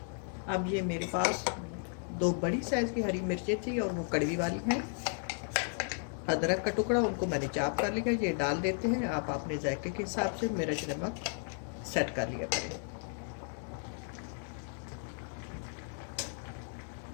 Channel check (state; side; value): silent; right; 55 dB below the other